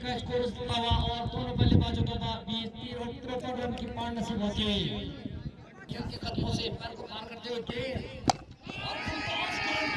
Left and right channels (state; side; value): identical; both; correlation 1.00